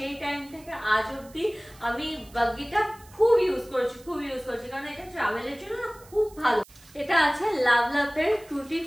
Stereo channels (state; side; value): noise; right; hiss, 24 dB below the sound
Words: টাইম থেকে আজ অব্দি আমি বাগিটা খুব ইউজ করেছি, কারণ এটা ট্রাভেলের জন্য খুব ভালো। এটা আছে লাভলাভের টুটি